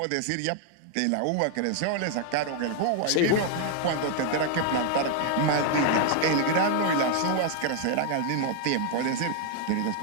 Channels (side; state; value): both; different; correlation 0.00